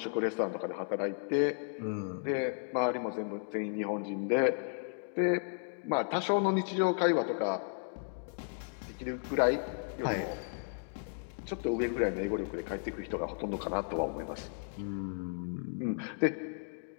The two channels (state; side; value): silent; right; digital silence